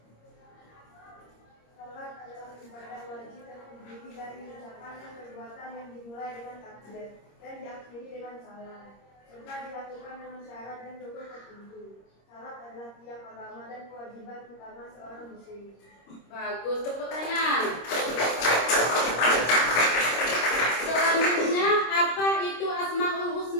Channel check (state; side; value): late; right; 26 ms